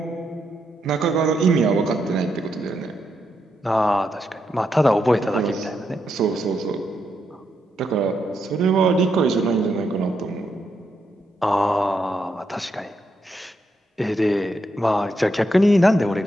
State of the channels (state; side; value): normal; both; correlation 0.81